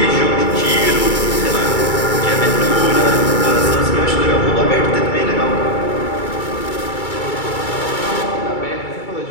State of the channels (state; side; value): late; right; 2.3 ms